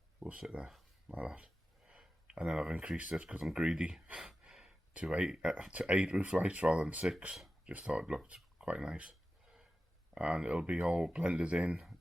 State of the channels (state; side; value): normal; both; correlation 0.94